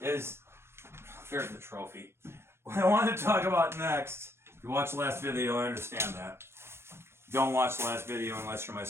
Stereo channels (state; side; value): late; left; 0.12 ms